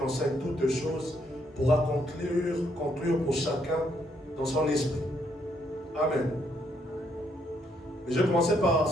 toutes choses pourra conclure pour chacun dans son esprit. Amen. Mais je vais commencer par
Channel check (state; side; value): normal; both; correlation 0.73